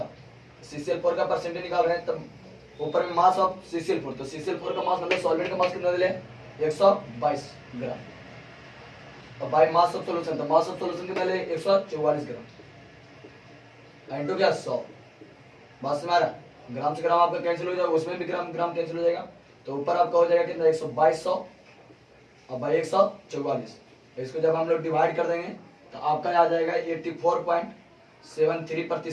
CCl4 का परसेंटेज निकाल रहे हैं। तब ऊपर में मास ऑफ CCl4, तो CCl4 का मास मतलब सॉल्वेंट का मास कितना दिले 122 ग्राम, और बाई मास ऑफ सॉल्यूशन, तो मास ऑफ सॉल्यूशन कितना ले 144 ग्राम, इनटू क्या 100, बात समझ आ रहा। ग्राम से ग्राम आपका कैंसिल हो जाएगा, उसमें भी ग्राम ग्राम कैंसिल हो जाएगा, तो ऊपर आपका हो जाएगा कितना 12200 और भाई 144। इसको जब हम लोग डिवाइड कर देंगे तो आपका आ जाएगा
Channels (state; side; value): identical; both; correlation 1.00